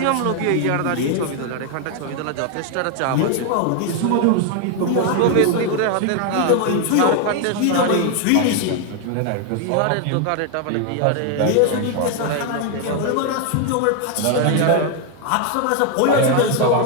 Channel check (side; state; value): both; different; correlation 0.01